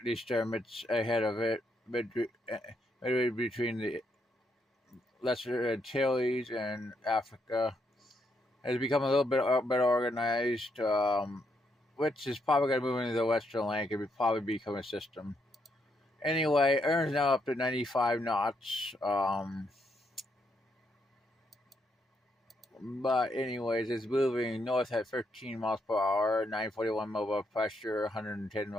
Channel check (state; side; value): normal; both; correlation 0.77